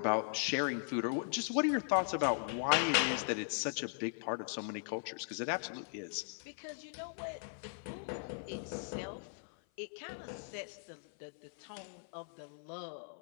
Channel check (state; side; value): silent; right; 52 dB below the other